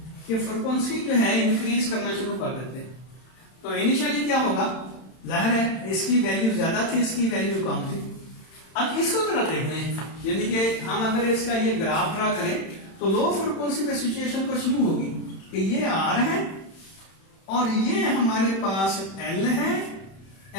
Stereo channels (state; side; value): late; right; 31 ms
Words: कि फ्रिक्वेंसी जो है इंक्रीज करना शुरू कर देते हैं, तो इनिशियली क्या होगा, जाहिर है इसकी वैल्यू ज्यादा थी, इसकी वैल्यू कम थी। अब इसको जरा देख रहे हैं, यानी कि हम अगर इसका ये ग्राफ ड्रा करें तो लो फ्रिक्वेंसी पे सिचुएशन कुछ यूं होगी कि ये आर है और ये हमारे पास एल है,